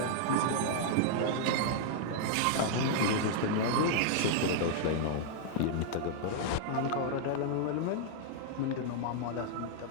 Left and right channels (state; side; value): different; both; correlation -0.01